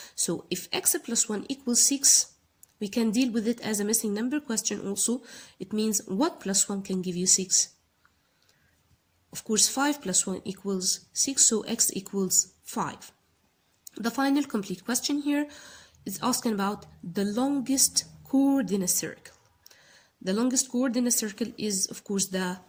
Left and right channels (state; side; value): identical; both; correlation 1.00